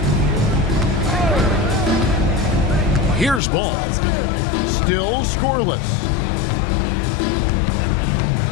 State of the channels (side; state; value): right; drops out; at 3.4 s